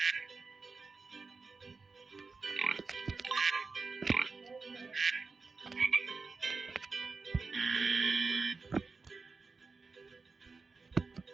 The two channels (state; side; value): quieter; left; 4.4 dB